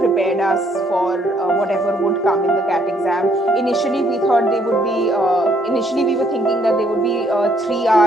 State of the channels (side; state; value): both; normal; correlation 0.68